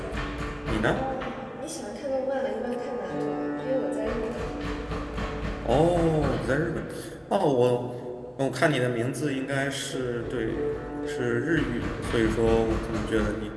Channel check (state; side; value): identical; both; correlation 1.00